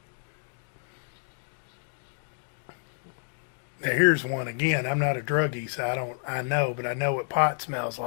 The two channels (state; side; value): silent; right; digital silence